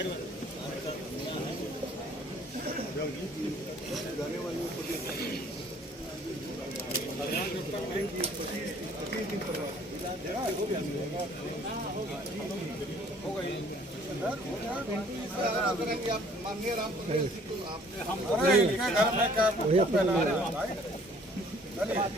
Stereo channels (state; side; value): normal; both; correlation 0.57